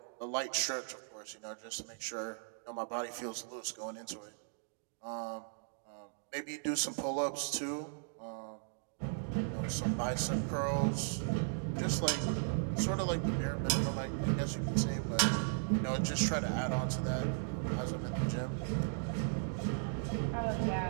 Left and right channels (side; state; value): left; silent; digital silence